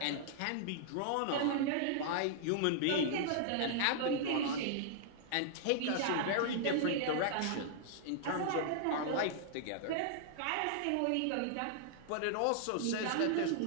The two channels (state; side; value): different; both; correlation -0.01